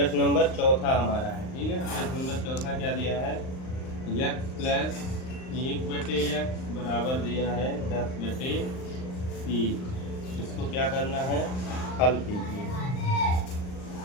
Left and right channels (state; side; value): late; right; 39 ms